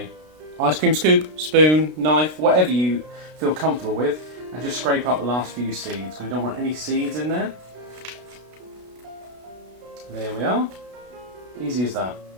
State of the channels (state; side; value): late; left; 32 ms